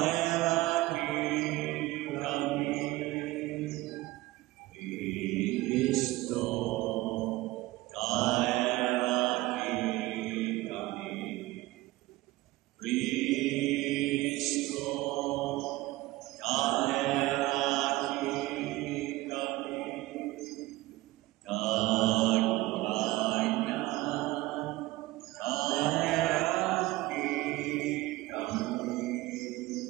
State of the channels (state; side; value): quieter; left; 18.8 dB